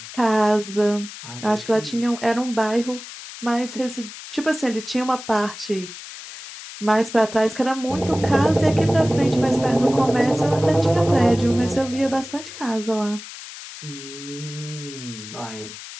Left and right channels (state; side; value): noise; left; hiss, 13 dB below the sound